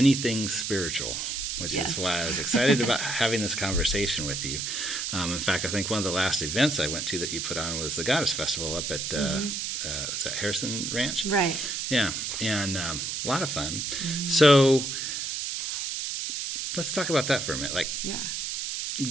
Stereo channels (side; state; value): right; noise; hiss, 3 dB below the sound